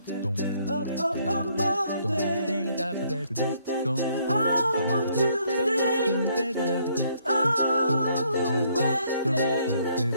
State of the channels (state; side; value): inverted; both; correlation -0.68